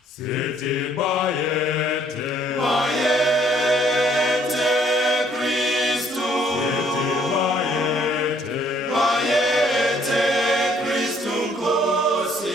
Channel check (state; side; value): normal; both; correlation 0.64